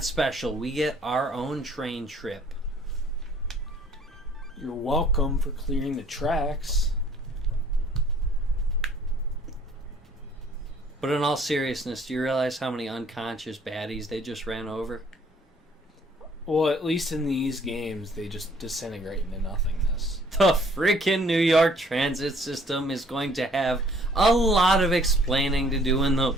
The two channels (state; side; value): normal; both; correlation 0.59